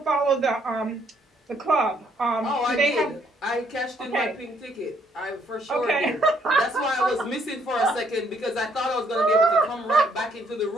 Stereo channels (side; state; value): both; normal; correlation 0.68